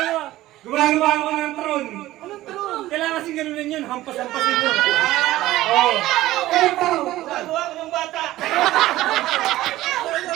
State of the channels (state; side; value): quieter; left; 15.9 dB